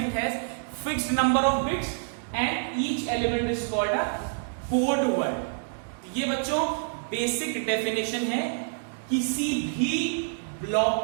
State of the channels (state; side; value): silent; left; digital silence